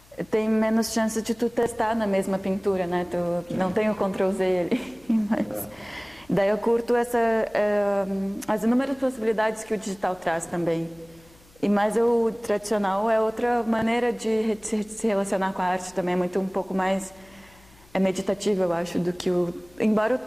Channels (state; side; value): noise; left; hum, 28 dB below the sound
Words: tem menos chance de tu testar na mesma pintura, né? Tu não tem o Ctrl-Z ali, mas daí eu curto as inúmeras possibilidades que o digital traz também. Mas o tradicional é outra maneira de se relacionar com a arte também, é um pouco mais meditativo, eu acho, do que embora